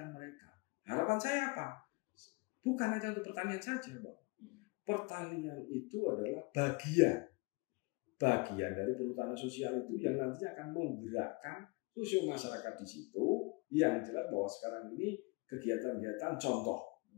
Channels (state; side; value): quieter; right; 27.2 dB